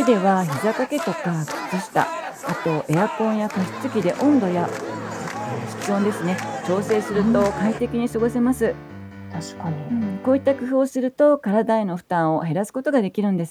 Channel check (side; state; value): both; identical; correlation 1.00